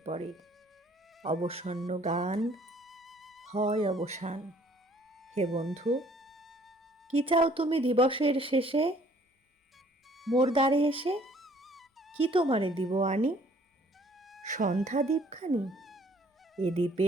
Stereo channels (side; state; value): both; normal; correlation 0.59